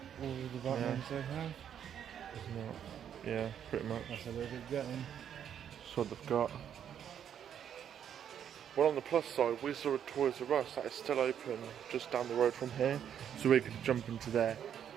all the Batmans they have. Isn't it? Yeah, pretty much. That's a little bit getting. That's what they've got. Well, on the plus side, we saw a Toys R Us that is still open just down the road from here, so we're going to jump into there.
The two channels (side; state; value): left; quieter; 9.0 dB